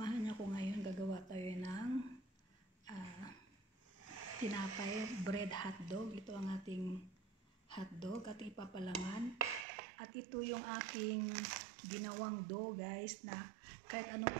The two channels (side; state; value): left; drops out; at 9.7 s